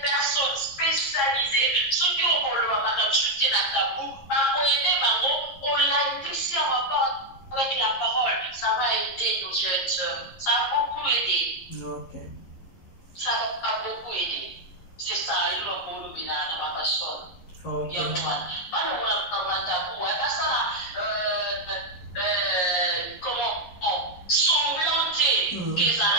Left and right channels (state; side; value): late; right; 11 ms